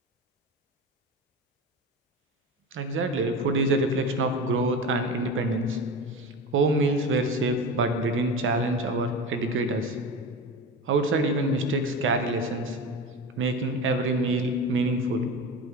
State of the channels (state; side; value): normal; both; correlation 0.28